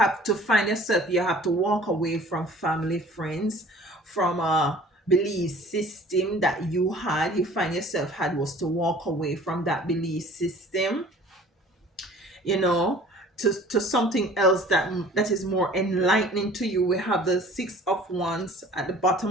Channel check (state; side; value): normal; both; correlation 0.49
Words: to find yourself, you have to walk away from family, friends, from a belief system that you had. You find yourself had was to walk away from that belief system, you know, to something else that is more enlightening to you. We have the Six of Wands at the bottom